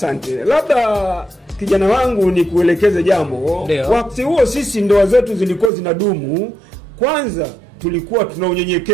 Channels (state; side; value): drops out; left; at 5.7 s